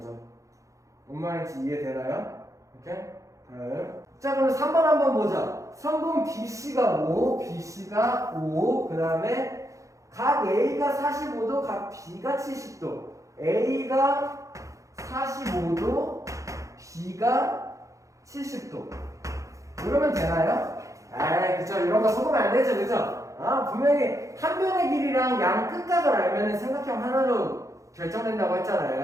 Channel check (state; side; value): late; left; 0.15 ms